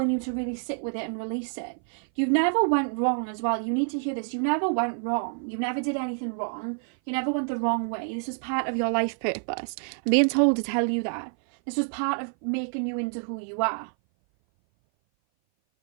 you to really sit with it and release it. You never went wrong as well. You need to hear this. You never went wrong. You never did anything wrong. You never went the wrong way. This was part of your life purpose. I'm being told to tell you that. This was part of making you into who you are.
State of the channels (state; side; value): silent; left; 57 dB below the other